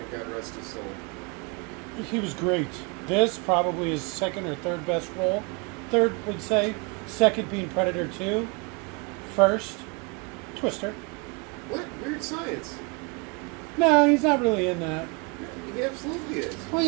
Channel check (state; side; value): quieter; left; 30.8 dB